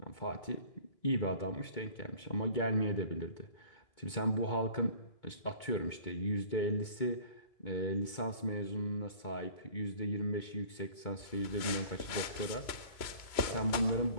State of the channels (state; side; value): late; right; 2.2 ms